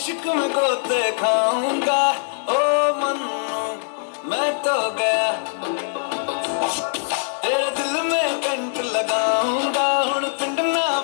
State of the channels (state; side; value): silent; right; digital silence